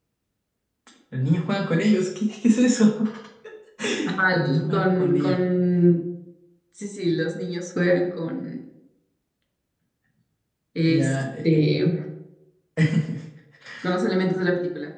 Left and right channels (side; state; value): both; identical; correlation 1.00